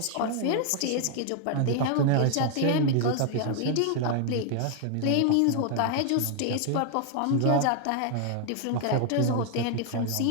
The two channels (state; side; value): different; both; correlation 0.00